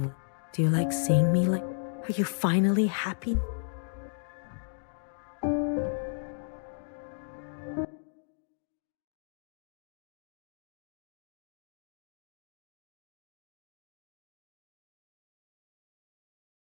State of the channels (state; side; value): silent; right; digital silence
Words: Do you like seeing me like... Are you finally happy?